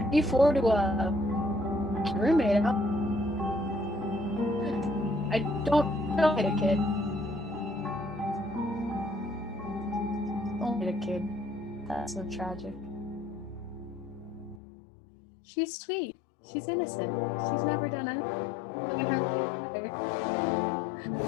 D4 to a roommate out, I don't hit a kid. Don't hit a kid. That's so tragic. She's sweet. She's innocent. She's never done anything.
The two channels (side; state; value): right; drops out; at 14.6 s